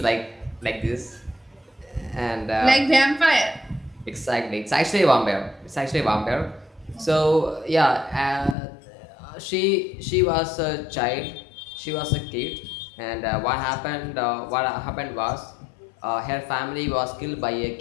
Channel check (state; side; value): drops out; right; at 8.6 s